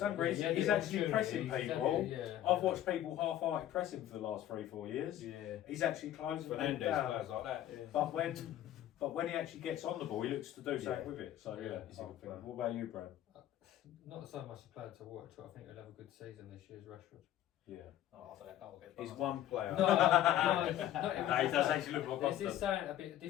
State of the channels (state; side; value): quieter; right; 12.3 dB